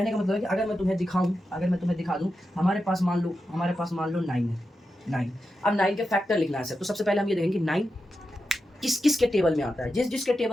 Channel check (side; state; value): both; normal; correlation 0.89